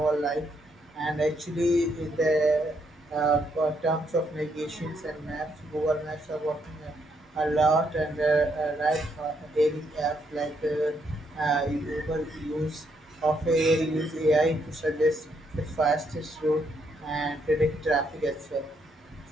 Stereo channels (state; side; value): normal; both; correlation 0.75